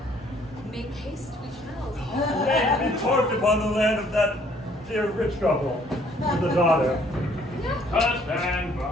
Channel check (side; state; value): both; normal; correlation 0.62